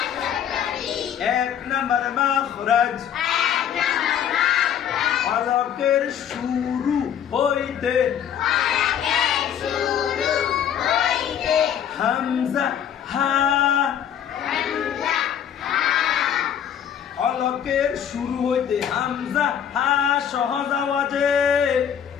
1 নম্বর মাখরাজ হলকের শুরু হইতে হামজা হা, হলকের শুরু হইতে হামজা হা সহজ আওয়াজে।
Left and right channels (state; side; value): quieter; right; 9.2 dB